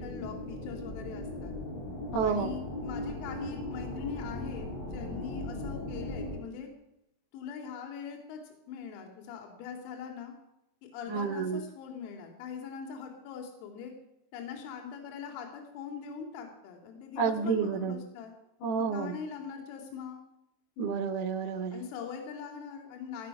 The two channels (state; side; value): late; right; 23 ms